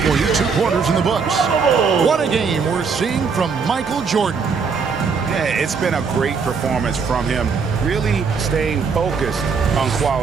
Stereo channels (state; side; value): quieter; left; 5.5 dB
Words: you. 2 quarters in the books. What a game we're seeing from Michael Jordan. Yeah, it's been a great performance from him, really staying focused on